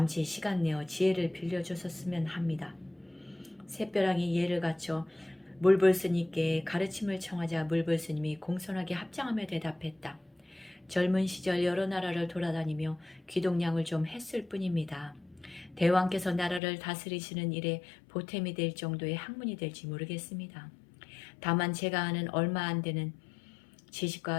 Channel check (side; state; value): right; drops out; at 16.6 s